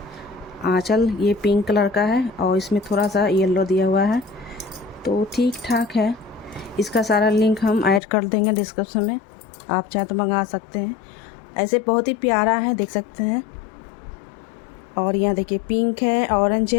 आंचल ये पिंक कलर का है और इसमें थोड़ा सा येलो दिया हुआ है, तो ठीक ठाक है। इसका सारा लिंक हम ऐड कर देंगे डिस्क्रिप्शन में, आप चाहे तो मंगा सकते हैं। ऐसे बहुत ही प्यारा है, देख सकते हैं। और यहाँ देखिए पिंक है, ऑरेंज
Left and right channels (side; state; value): right; drops out; at 8.0 s